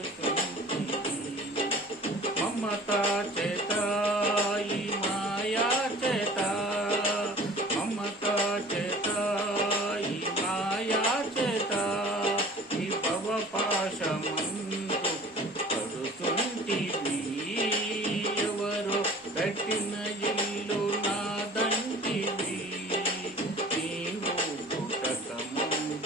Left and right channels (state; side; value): normal; both; correlation 0.45